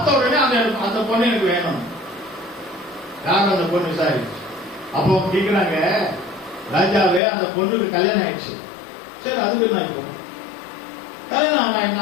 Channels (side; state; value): right; drops out; at 7.2 s